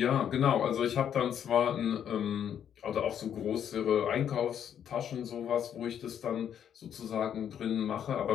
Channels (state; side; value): quieter; right; 9.1 dB